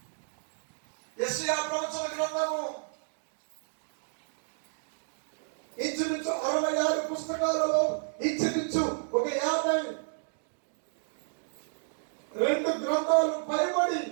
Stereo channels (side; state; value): left; silent; digital silence